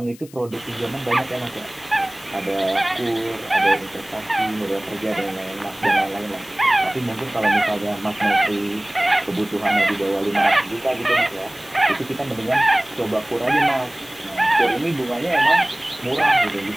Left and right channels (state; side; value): noise; left; hiss, 23 dB below the sound